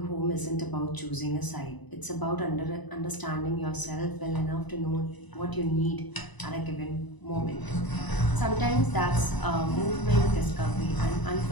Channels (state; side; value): late; right; 1.0 ms